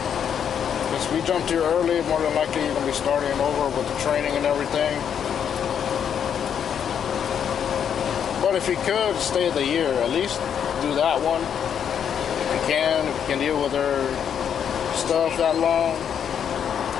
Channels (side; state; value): right; quieter; 8.3 dB